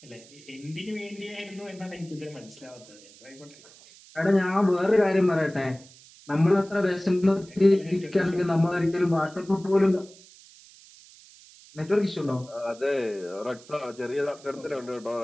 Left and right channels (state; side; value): noise; right; hiss, 23 dB below the sound